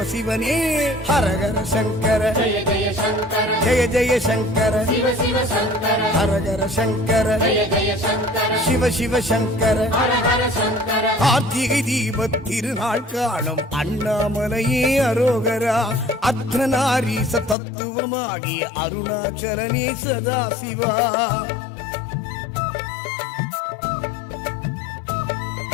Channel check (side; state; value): right; drops out; at 17.6 s